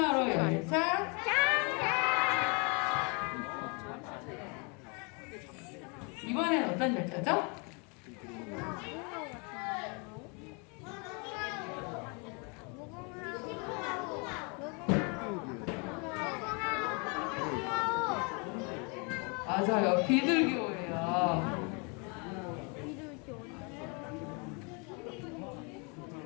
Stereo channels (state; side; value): quieter; right; 33.3 dB